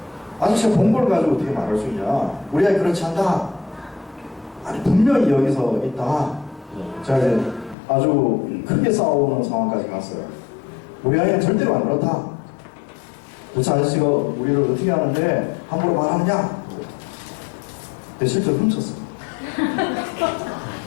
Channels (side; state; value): right; drops out; at 7.8 s